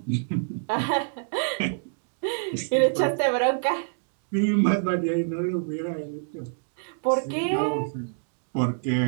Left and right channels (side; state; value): left; silent; digital silence